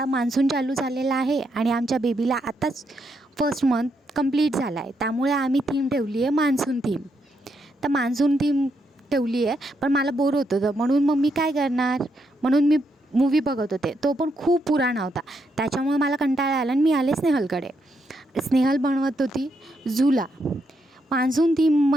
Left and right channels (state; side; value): normal; both; correlation 0.79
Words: मान्सून चालू झालेला आहे आणि आमच्या बेबीला आताच फर्स्ट मंथ कंप्लीट झाला आहे, त्यामुळे आम्ही थीम ठेवली आहे मान्सून थीम. तर मान्सून थीम ठेवली आहे, पण मला बोर होत होतं म्हणून मग मी काय करणार, म्हणून मी मूवी बघत होते. तो पण खूप पुराणा होता, त्याच्यामुळे मला कंटाळा आला आणि मी आले स्नेहलकडे. स्नेहल बनवत होती झुला. मान्सून थीम